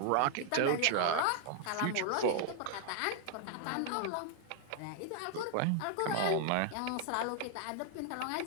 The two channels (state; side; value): different; both; correlation 0.00